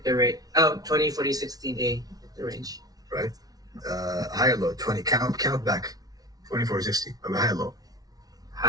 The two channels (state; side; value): late; left; 0.18 ms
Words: the rate. 20, 40, 16-day if the range. Right. High or low? 20. Count back. 24, 60. High or low?